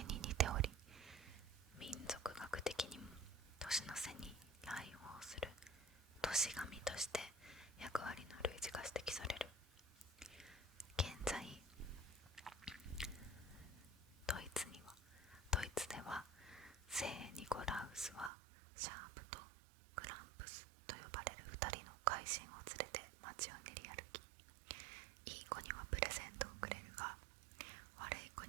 に似ており、民族学的にも年の瀬に来訪する年神として役割の類似が指摘される。現在ドイツでは聖ニコラウスはシャープとクランプスと呼ばれる2人の怪人を連れて街を練り歩き、いい子にはプレゼントをくれるが、悪い子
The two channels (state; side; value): drops out; left; at 18.3 s